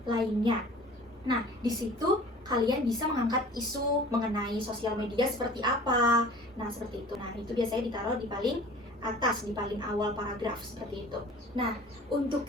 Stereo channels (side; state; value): both; normal; correlation 0.45